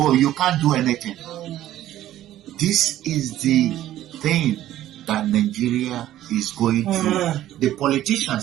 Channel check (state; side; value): quieter; left; 13.3 dB